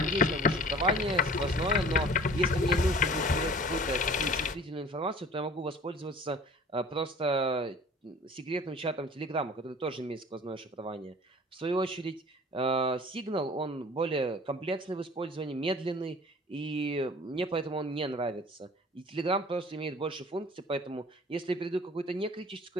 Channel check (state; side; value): normal; both; correlation 0.46